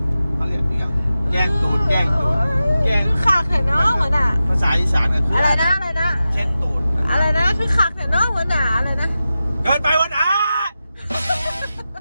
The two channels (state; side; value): inverted; both; correlation -0.93